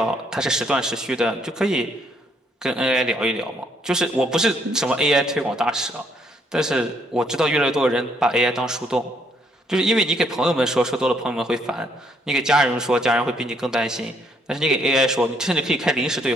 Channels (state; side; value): normal; both; correlation 0.70